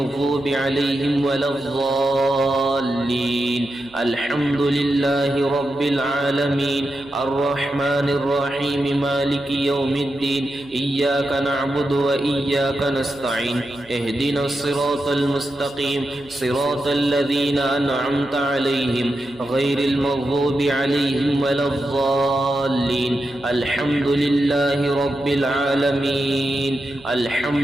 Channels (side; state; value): right; noise; hum, 28 dB below the sound